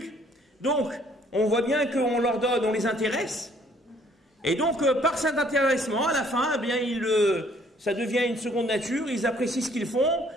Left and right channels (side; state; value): both; normal; correlation 0.61